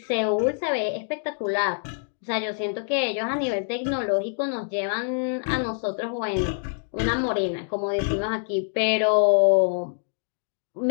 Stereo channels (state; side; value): silent; right; digital silence